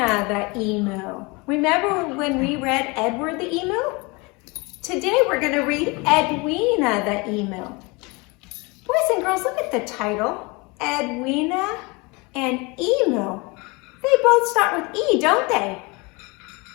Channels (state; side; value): quieter; right; 27.0 dB